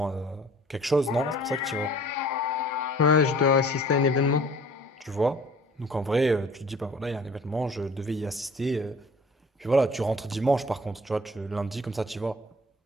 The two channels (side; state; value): both; normal; correlation 0.49